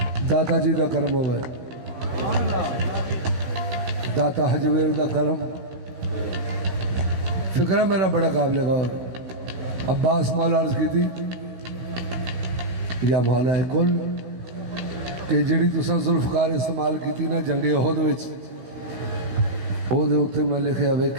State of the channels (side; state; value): left; late; 16 ms